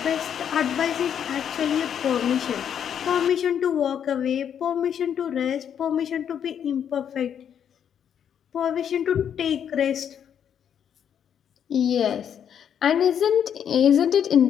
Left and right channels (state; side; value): quieter; right; 8.6 dB